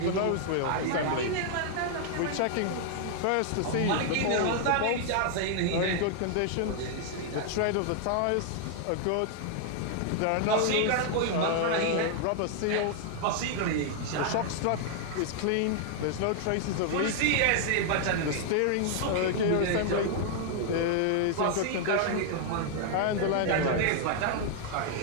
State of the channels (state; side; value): different; both; correlation 0.00